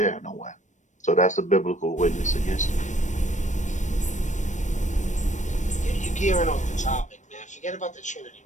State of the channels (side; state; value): right; late; 0.35 ms